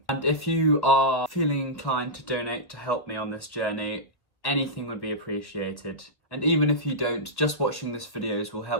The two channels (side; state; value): right; late; 1.3 ms